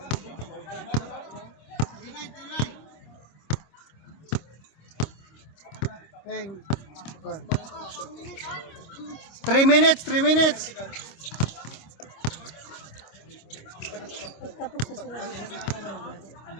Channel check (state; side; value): late; right; 26 ms